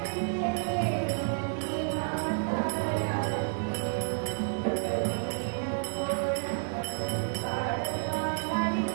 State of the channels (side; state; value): left; silent; digital silence